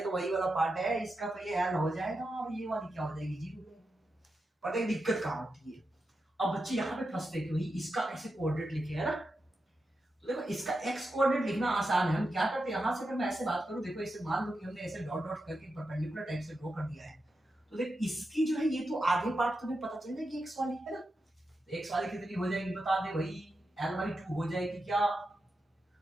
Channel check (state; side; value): normal; both; correlation 0.88